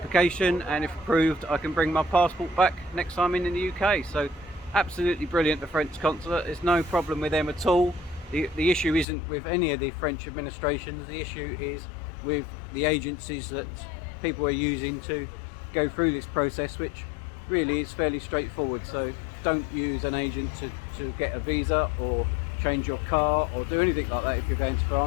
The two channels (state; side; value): drops out; right; at 9.1 s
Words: and if approved I can bring my passport back next time in the UK. So absolutely brilliant, the French consulate. There's no problem with them at all. The issue isn't with any of the French administrations. The issue is with the agencies that people are using to go through this process, which really is fairly straightforward. So don't use an agent to get a visa or change your car or do anything like that. If you're going to